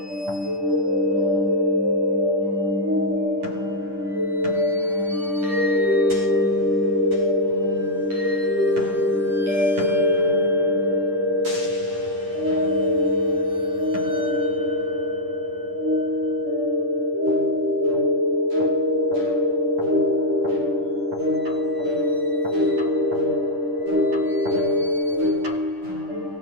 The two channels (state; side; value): late; left; 10 ms